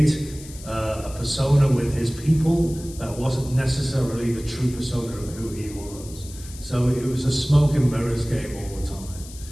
a persona with his people that wasn't necessarily the true persona of who he was. So it was a smoke and mirrors game all the time.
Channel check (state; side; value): noise; left; hiss, 17 dB below the sound